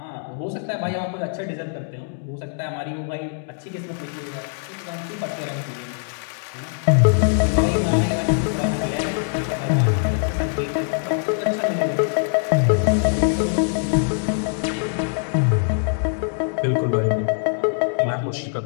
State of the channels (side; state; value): right; silent; digital silence